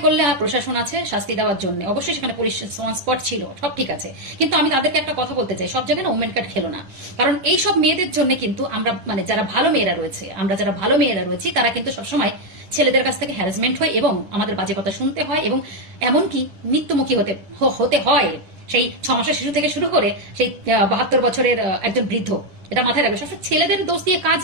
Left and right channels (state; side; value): late; left; 10 ms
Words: করলে প্রশাসন আছে শাস্তি দেওয়ার জন্য, অবশ্যই সেখানে পুলিশ স্পট ছিল, সব ঠিক আছে। কিন্তু আমি তাদেরকে একটা কথা বলতে চাই, সব জায়গায় না ওমেন কার্ড খেলো না, কারণ এই সব মেয়েদের জন্য কিন্তু আমরা মানে যারা ভালো মেয়েরা রয়েছে, আমরা যারা ভালো মেয়েরা রয়েছি তারা কিন্তু সবসময় ছেলেদের কাছ থেকে হ্যারাসমেন্ট হয় এবং আমাদের বাজে কথা শুনতে হয় এবং এমনকি মৃত্যুমুখী হতে হয়, সেই 6 মাসের শিশু থেকে শুরু করে সেই 72 বছরের একজন বৃদ্ধ। এটা মাথায় রাখবে, সবসময় ছেলেদের দোষ দিয়ে কাজ